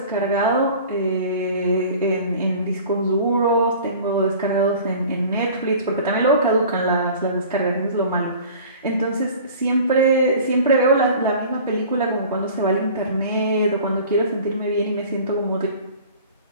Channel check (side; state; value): both; inverted; correlation -0.44